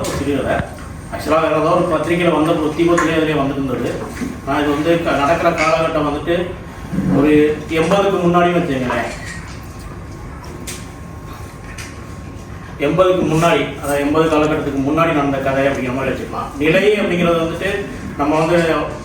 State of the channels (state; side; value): identical; both; correlation 1.00